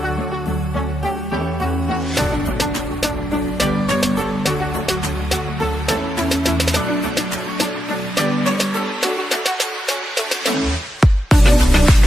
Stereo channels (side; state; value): both; normal; correlation 0.84